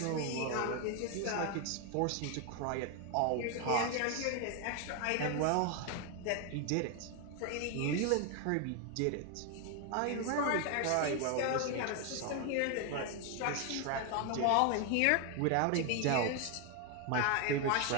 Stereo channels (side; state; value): both; different; correlation 0.01